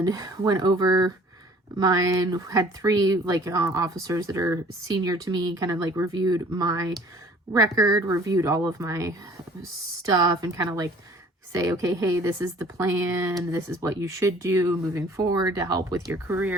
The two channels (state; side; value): normal; both; correlation 0.52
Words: went over mine. Had 3 officers that are senior to me, kind of like reviewed my record, reviewed all of my stuff, and kind of like say, okay, hey, this is the plan. This is what you should do moving forward to help with your